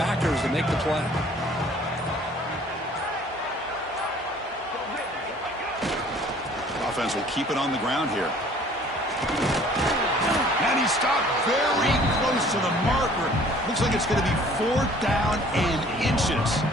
to make the play. Offense will keep it on the ground here. And he stopped very close to the marker. Looks like it's going to be 4th down and inches.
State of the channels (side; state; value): both; normal; correlation 0.53